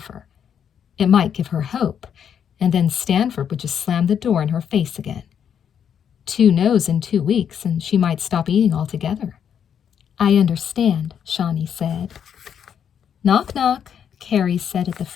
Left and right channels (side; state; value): right; quieter; 8.3 dB